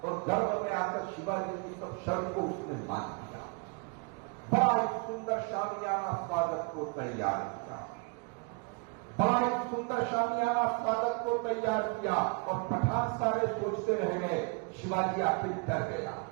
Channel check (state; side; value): quieter; left; 33.5 dB